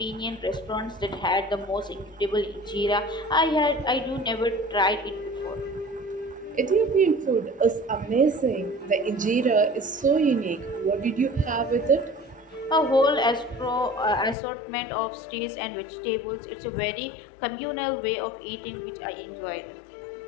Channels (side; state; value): right; drops out; at 14.4 s